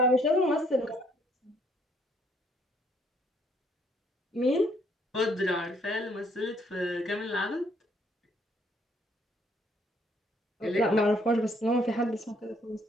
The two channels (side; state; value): both; normal; correlation 0.66